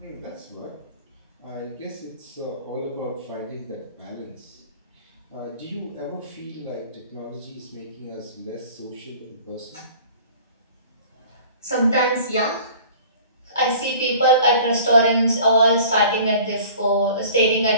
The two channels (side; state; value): both; inverted; correlation -0.47